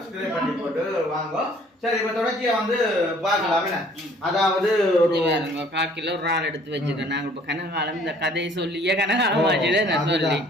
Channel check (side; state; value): both; normal; correlation 0.56